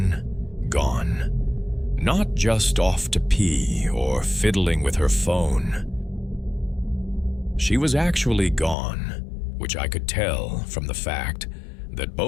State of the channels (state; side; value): drops out; right; at 8.8 s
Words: Not just off to pee or fiddling with her phone. She was actually gone, which I could tell from the fact that